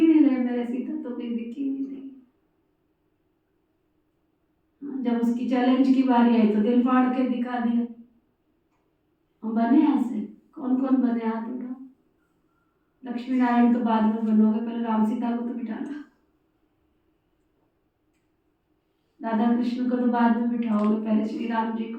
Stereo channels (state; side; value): identical; both; correlation 1.00